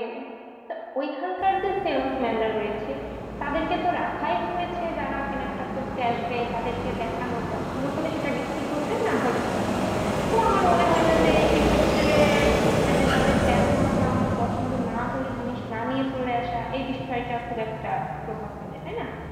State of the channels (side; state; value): both; identical; correlation 1.00